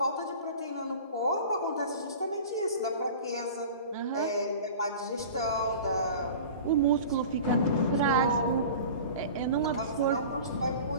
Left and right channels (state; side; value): inverted; both; correlation -0.38